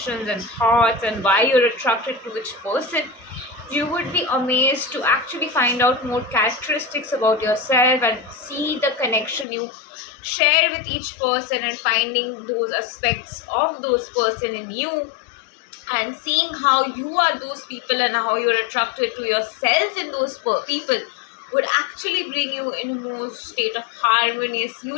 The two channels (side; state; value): right; drops out; at 9.5 s